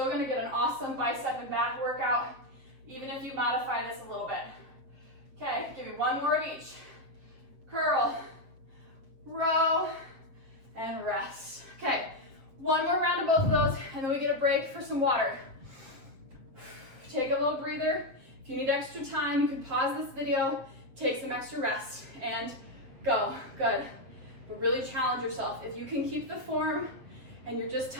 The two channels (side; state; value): left; late; 7.4 ms